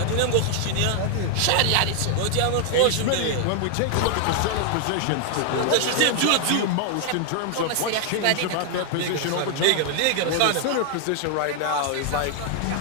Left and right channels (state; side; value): different; both; correlation 0.00